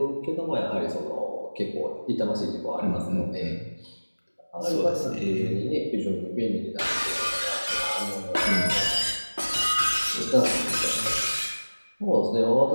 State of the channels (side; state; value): both; inverted; correlation -1.00